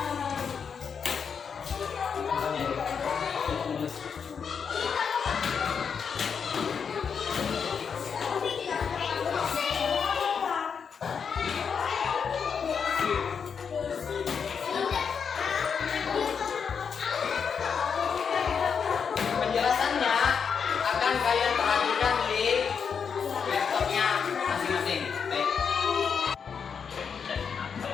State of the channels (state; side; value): quieter; right; 6.5 dB